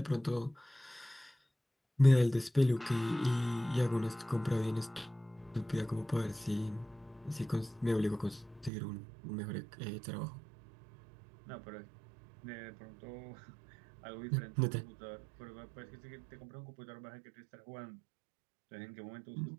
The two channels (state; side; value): drops out; left; at 8.7 s